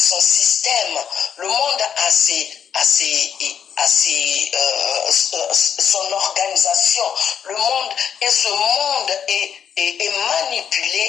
système, le monde a son organisation. Le monde, et ce monde est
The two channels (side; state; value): right; quieter; 8.1 dB